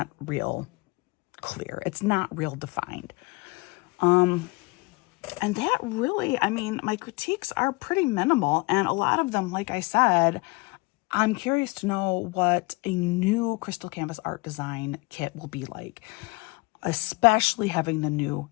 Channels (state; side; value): quieter; right; 25.9 dB